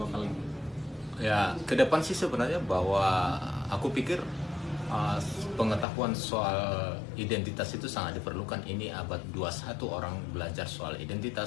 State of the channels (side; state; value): right; drops out; at 5.9 s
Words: ini. Ya, ke depan sih sebenarnya bahwa aku pikir pengetahuan soal identitas itu sangat diperlukan. Ini abad 21 orang belajar soal